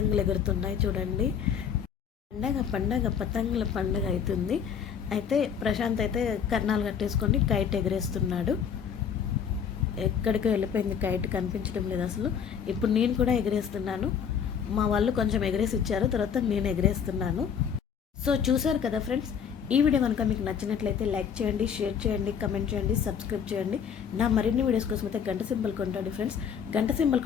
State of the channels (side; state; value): right; quieter; 7.6 dB